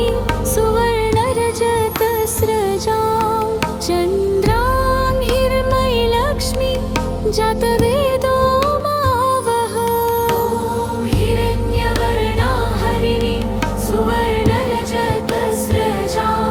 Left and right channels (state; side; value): identical; both; correlation 1.00